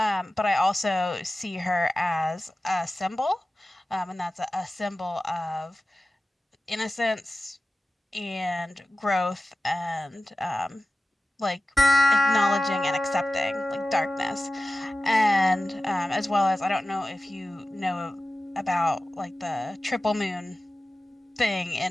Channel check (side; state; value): both; normal; correlation 0.95